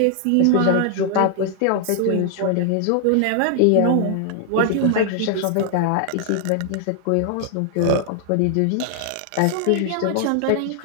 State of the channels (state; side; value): different; both; correlation 0.00